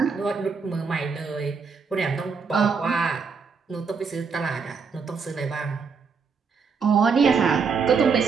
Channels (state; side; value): quieter; left; 5.4 dB